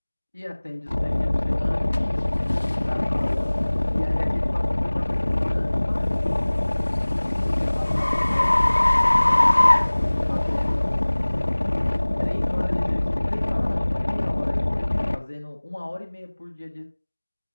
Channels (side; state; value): both; inverted; correlation -1.00